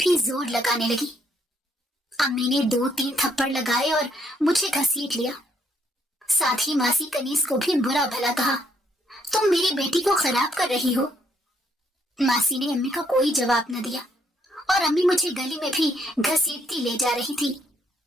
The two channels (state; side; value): normal; both; correlation 0.71